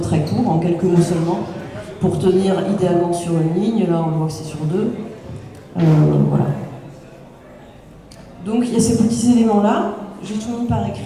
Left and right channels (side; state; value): both; identical; correlation 1.00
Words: court, en quelques mots seulement, pour tenir idéalement sur une ligne. Là, on voit que c'est sur 2. Voilà. Donc, il y a ces petits éléments-là. J'ai tout mis par écrit